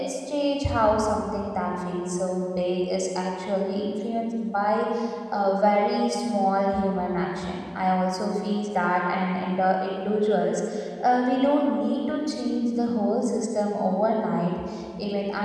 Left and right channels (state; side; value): identical; both; correlation 1.00